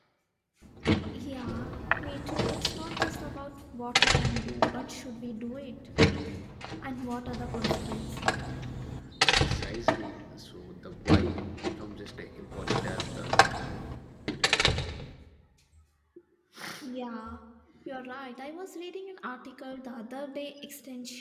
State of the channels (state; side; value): identical; both; correlation 1.00